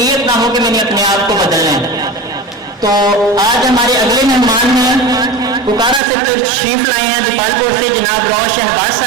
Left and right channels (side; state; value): left; drops out; at 6.0 s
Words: نہ ہو کہ میں نے اپنے آپ کو بدلنا ہے. تو آج ہمارے اگلے مہمان ہیں اکارا سے تشریف لائے ہیں دیپال پور سے جناب روش شہباز